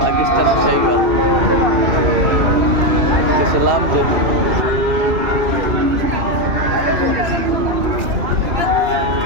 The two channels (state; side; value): late; left; 2.6 ms